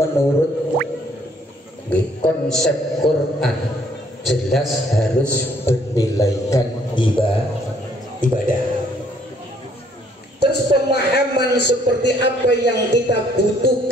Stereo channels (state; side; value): normal; both; correlation 0.64